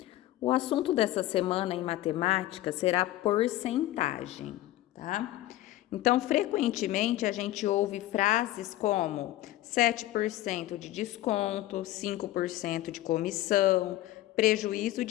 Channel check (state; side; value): quieter; right; 15.5 dB